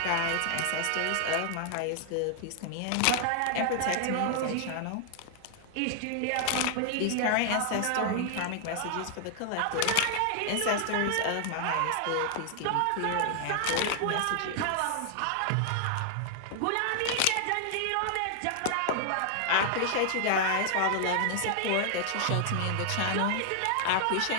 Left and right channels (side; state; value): both; different; correlation 0.00